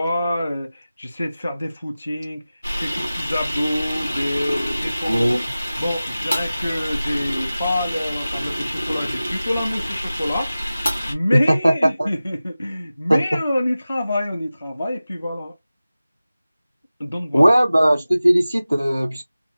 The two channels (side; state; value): both; inverted; correlation -0.96